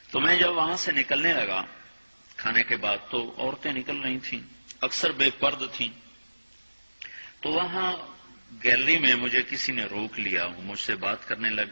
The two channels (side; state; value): both; inverted; correlation -1.00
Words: تو میں جب وہاں سے نکلنے لگا کھانے کے بعد تو عورتیں نکل رہی تھیں، اکثر بے پرد تھیں. تو وہاں گیلری میں مجھے کسی نے روک لیا، مجھ سے بات کرنے لگ